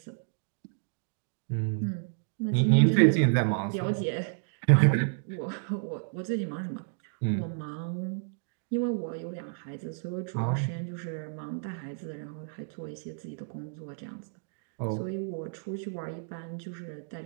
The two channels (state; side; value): silent; left; digital silence